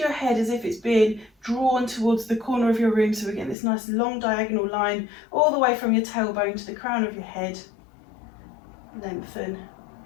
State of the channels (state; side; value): drops out; right; at 3.6 s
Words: head as if it's being drawn towards the corner of your room. So we're getting this nice long diagonal line all the way from your tailbone to the crown of your head. Lengthen.